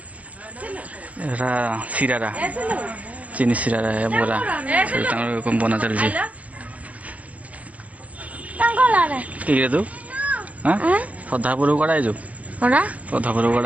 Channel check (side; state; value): left; late; 0.073 ms